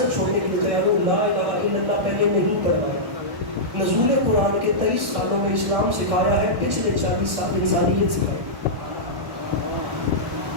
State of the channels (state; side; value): late; left; 1.1 ms